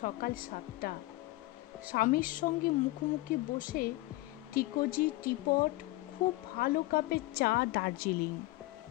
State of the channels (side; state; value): right; quieter; 19.5 dB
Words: 7টা, স্বামীর সঙ্গে মুখোমুখি বসে টিকোজি টিপট, খুব ভালো কাপে চা, দার্জিলিং।